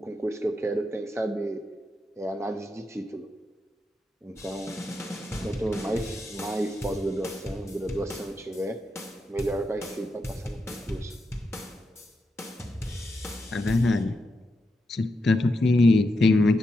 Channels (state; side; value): normal; both; correlation 0.85